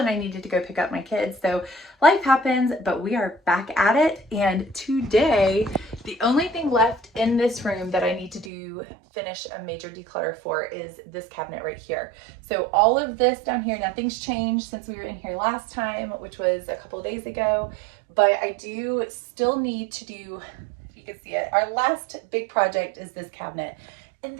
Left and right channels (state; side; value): drops out; left; at 8.5 s